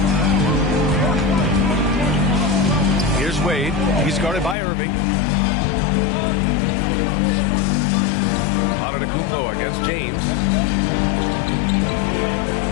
Here's Wade. He's guarded by Irving. Antetokounmpo against James.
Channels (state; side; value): drops out; right; at 4.5 s